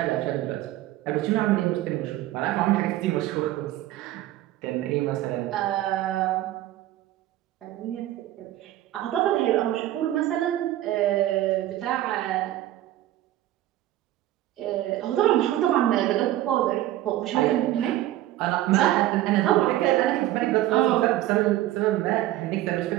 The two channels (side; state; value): left; quieter; 14.5 dB